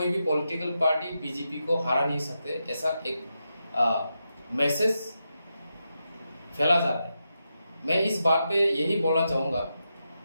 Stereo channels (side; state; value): both; inverted; correlation -0.87